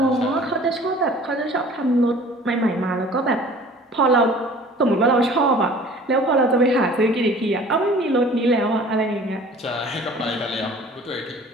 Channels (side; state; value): both; normal; correlation 0.48